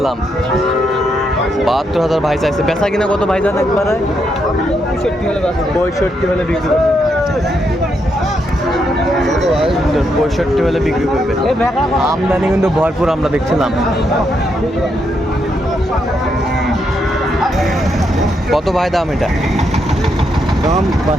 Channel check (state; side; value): normal; both; correlation 0.79